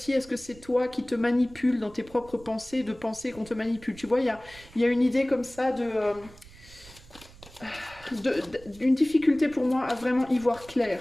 est-ce que c'est toi qui te manipules dans tes propres pensées, de penser qu'on te manipule? Tu vois, il y a une idée comme ça d'une difficulté pour moi à vraiment y voir clair,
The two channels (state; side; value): noise; right; rumble, 21 dB below the sound